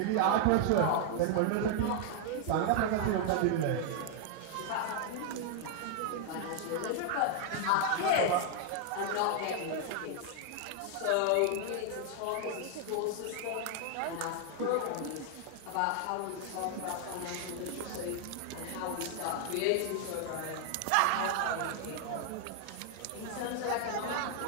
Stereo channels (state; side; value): different; both; correlation 0.00